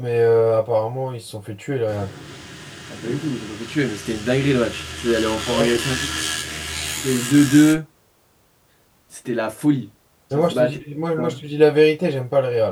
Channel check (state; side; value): identical; both; correlation 1.00